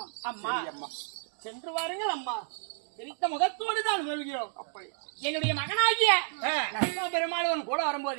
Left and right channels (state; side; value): silent; left; digital silence